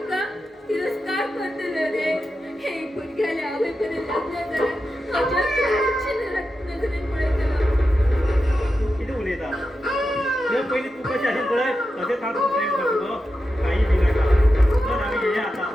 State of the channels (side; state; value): both; normal; correlation 0.90